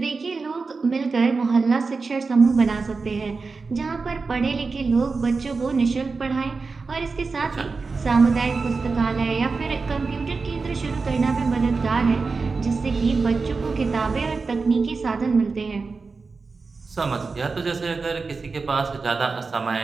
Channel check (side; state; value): left; quieter; 4.3 dB